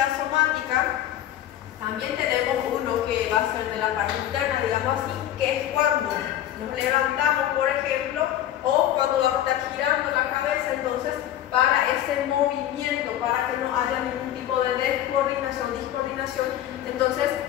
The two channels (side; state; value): right; quieter; 12.1 dB